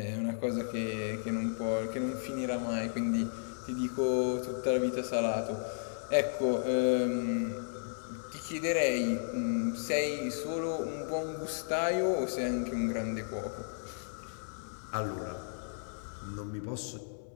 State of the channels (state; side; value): silent; right; digital silence